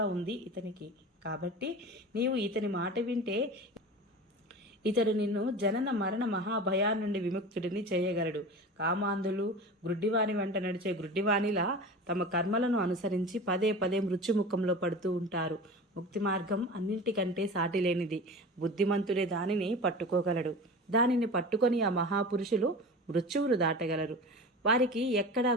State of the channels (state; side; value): normal; both; correlation 0.33